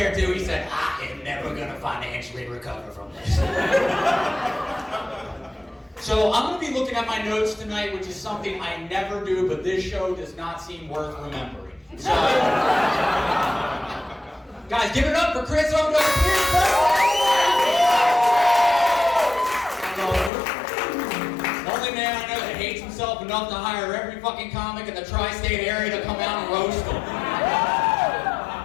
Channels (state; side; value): drops out; right; at 20.3 s